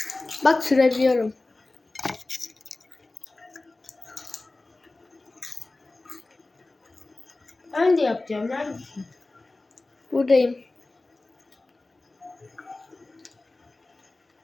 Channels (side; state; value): right; quieter; 3.1 dB